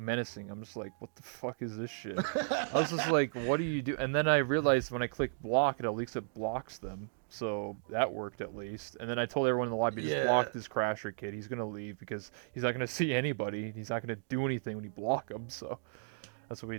I'm just like, what the fuck is this shit? I was just like, what do you do? And then I realized when I click block, at least it blocks them. So that worked at least. And then I told everyone in the lobby, just yeah, block this crasher kid. He's gonna leave because he's not gonna see anybody. He's not gonna do anything when you block him. So that's what we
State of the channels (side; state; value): left; silent; digital silence